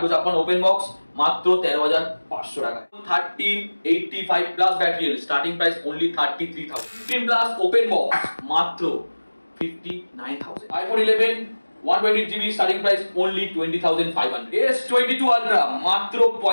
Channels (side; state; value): both; inverted; correlation -1.00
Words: open box, মাত্র 13,500 টাকা। 1385 plus battery, starting price only 33,000। 15 plus open box, মাত্র 59,000। iPhone 11 128GB starting price only 20,500। S22 Ultra মাত্র